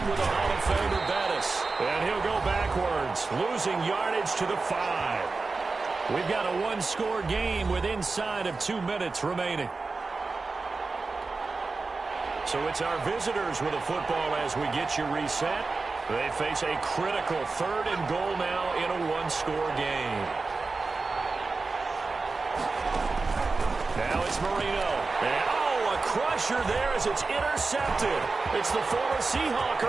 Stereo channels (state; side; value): quieter; left; 3.9 dB